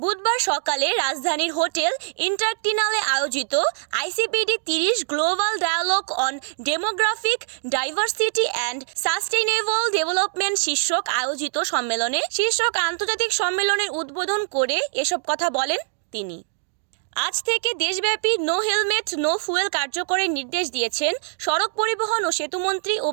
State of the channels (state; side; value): silent; left; digital silence